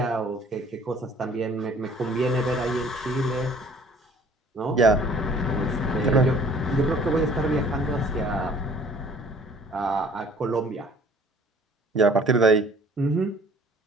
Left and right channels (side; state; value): both; normal; correlation 0.53